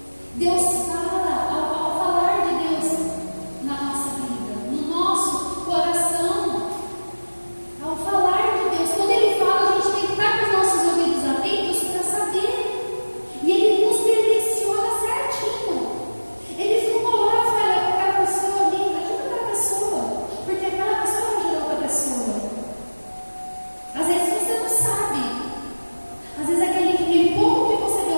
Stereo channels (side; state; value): both; inverted; correlation -1.00